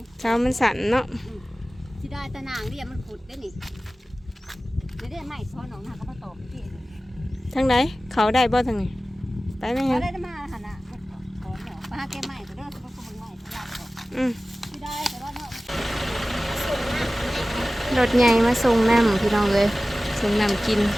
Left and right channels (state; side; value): normal; both; correlation 0.97